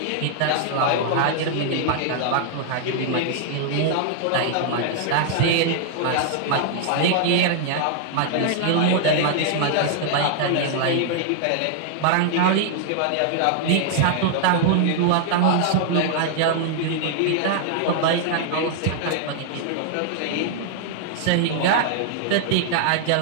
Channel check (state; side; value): different; both; correlation 0.00